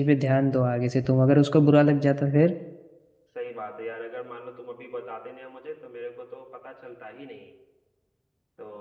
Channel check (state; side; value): identical; both; correlation 1.00